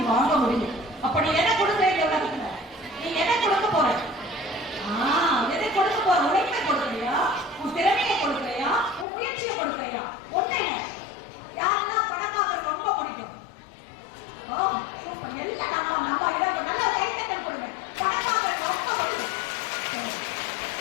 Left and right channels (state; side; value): drops out; right; at 9.1 s